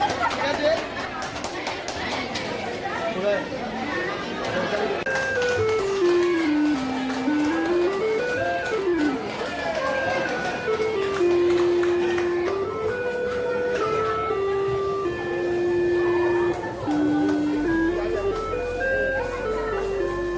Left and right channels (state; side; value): identical; both; correlation 1.00